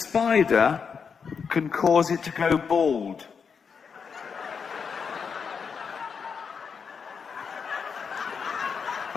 can cause it to go bald.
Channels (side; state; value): right; quieter; 6.1 dB